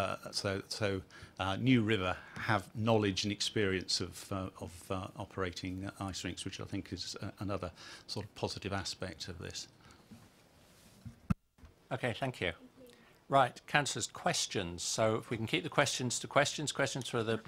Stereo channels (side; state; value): both; identical; correlation 1.00